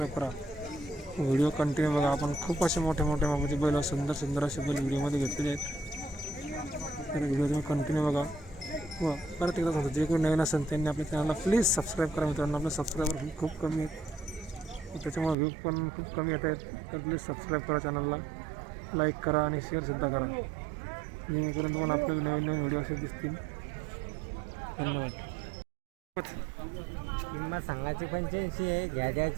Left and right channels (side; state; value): left; drops out; at 15.4 s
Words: करा. व्हिडिओ कंटिन्यू बघा. आपण खूप असे मोठे मापाचे बैल व सुंदर असे बैल व्हिडिओमध्ये घेतलेले आहेत. तर व्हिडिओ तुम्ही कंटिन्यू बघा व परत एकदा सांगतो, जे कोणी नवीन असेल त्यांनी आपल्या चॅनलला प्लीज सबस्क्राईब करा. मित्रांनो, आपले सबस्क्रायबर खूप कमी आहेत, त्याच्यामुळे व्ह्यू पण खूप कमी येत आहेत. तर प्लीज सबस्क्राईब करा चॅनलला, लाईक करा आणि शेअरसुद्धा करा, जेणेकरून तुम्हाला आपले नवीन व्हिडिओ असे दिसतील. धन्यवाद. किंमत सांगायची 85 आहे,